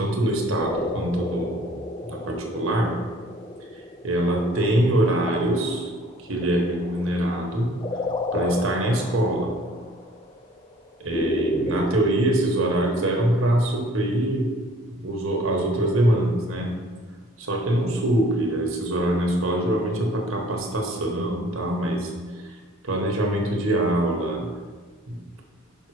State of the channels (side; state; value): both; normal; correlation 0.54